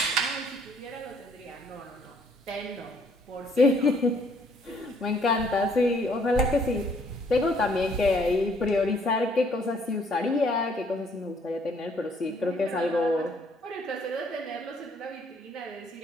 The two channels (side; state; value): both; normal; correlation 0.64